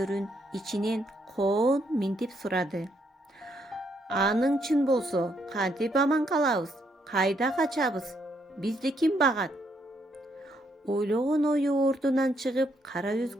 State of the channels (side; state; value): both; normal; correlation 0.74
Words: ичинен коон минтип сурады: "Аның чын болсо, кантип аман калабыз? Кайда качабыз? Бизди ким багат?" Ойлогон ою ордунан чыгып, кара